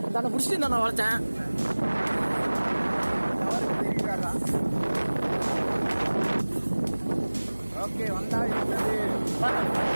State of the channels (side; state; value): both; inverted; correlation -1.00